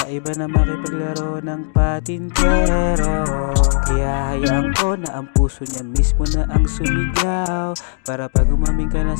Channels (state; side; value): silent; right; digital silence